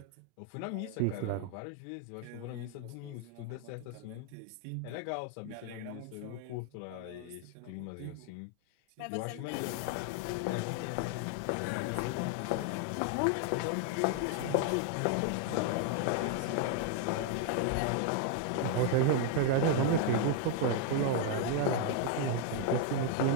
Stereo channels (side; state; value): both; different; correlation 0.00